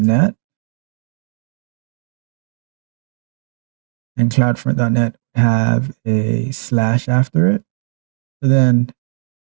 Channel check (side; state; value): left; silent; 64 dB below the other